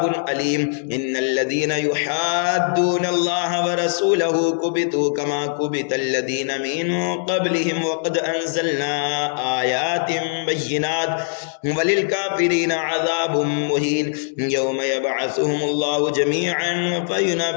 أليم إن الذين يحادون الله ورسوله كبتوا كما كبت الذين من قبلهم وقد أنزلنا آيات بينات وللكافرين عذاب مهين يوم يبعثهم الله جميعا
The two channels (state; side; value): silent; right; digital silence